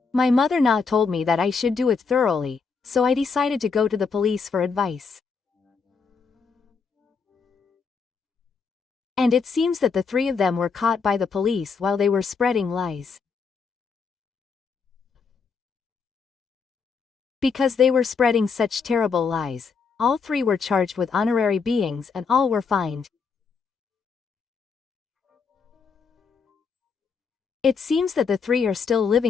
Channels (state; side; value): quieter; right; 5.3 dB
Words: My mother-in-law told me that I should do it thoroughly, so I decided to go to the police for advice. And it seems that the three of them were caught by the police while they were spreading lies. Because they were spreading such terrible lies, all three were charged with honorary beatings and all were fined. It seems that the three are still